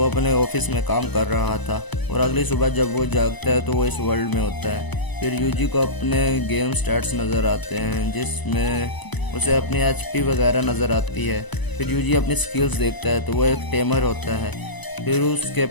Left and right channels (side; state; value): right; late; 1.0 ms